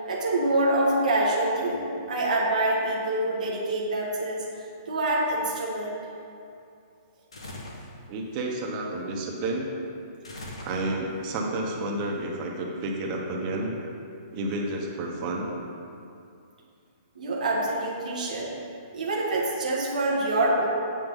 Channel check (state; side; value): inverted; both; correlation -0.48